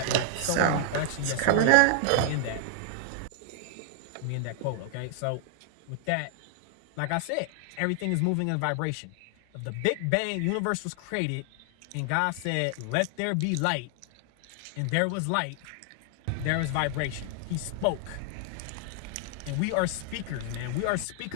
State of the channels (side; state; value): both; different; correlation 0.00